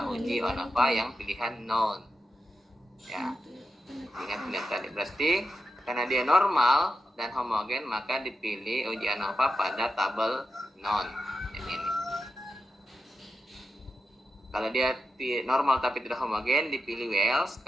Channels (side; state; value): both; normal; correlation 0.88